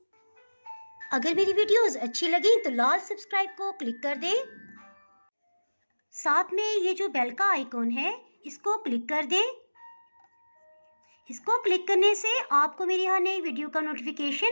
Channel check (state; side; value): inverted; both; correlation -1.00